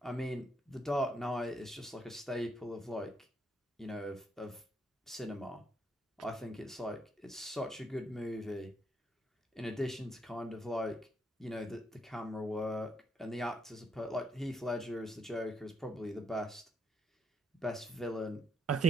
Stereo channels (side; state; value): both; normal; correlation 0.74